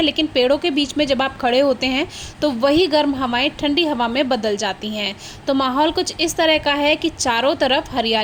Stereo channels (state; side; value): identical; both; correlation 1.00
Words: लेकिन पेड़ों के बीच में जब आप खड़े होते हैं तो वही गर्म हवाएं ठंडी हवा में बदल जाती हैं। तो माहौल कुछ इस तरह का है कि चारों तरफ